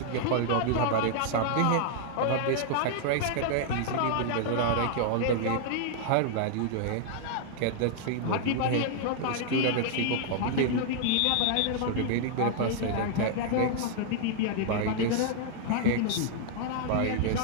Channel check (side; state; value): both; different; correlation -0.01